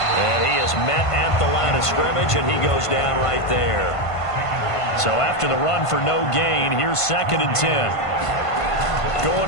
he is met at the line of scrimmage, and he goes down right there. So after the run for no gain, here's 2nd and 10.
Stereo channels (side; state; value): right; late; 1.5 ms